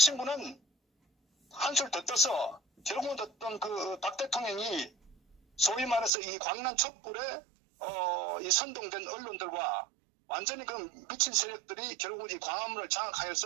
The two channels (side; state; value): left; drops out; at 6.1 s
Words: 한술 더 떠서 결국은 어떤 박 대통령이 소위 말해서 이 광란 촛불에 이 선동된 언론들과 완전히 그 미친 세력들이 결국 이 광화문을